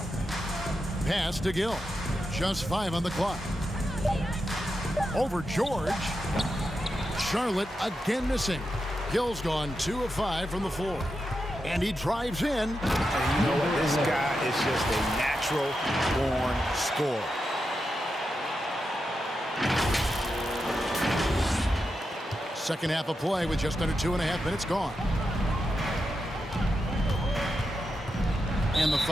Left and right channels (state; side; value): normal; both; correlation 0.87